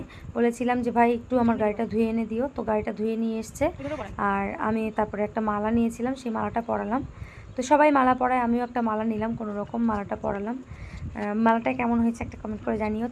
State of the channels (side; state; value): both; identical; correlation 1.00